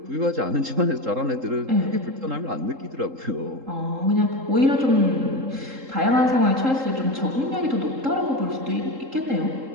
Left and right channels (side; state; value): left; late; 3.8 ms